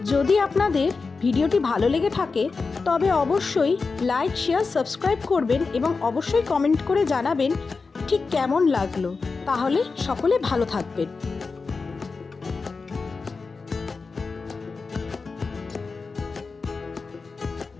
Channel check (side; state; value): right; quieter; 4.4 dB